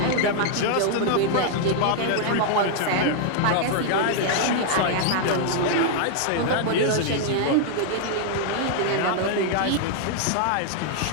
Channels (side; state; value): both; different; correlation -0.01